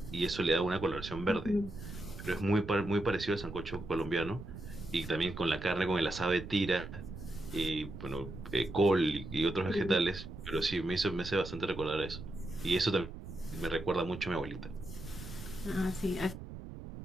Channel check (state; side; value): noise; right; rumble, 11 dB below the sound